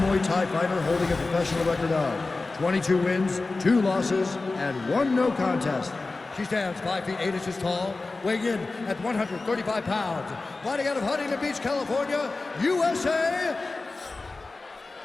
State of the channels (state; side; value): quieter; right; 3.5 dB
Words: Thai fighter holding a professional record of 22 wins, 2 losses, and 1 no contest. She stands 5 feet 8 inches tall, weighing in at 135 pounds, fighting out of Huntington Beach, California, USA.